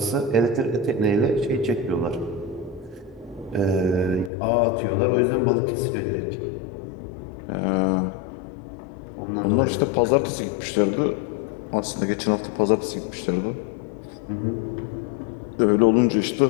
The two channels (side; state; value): right; drops out; at 4.3 s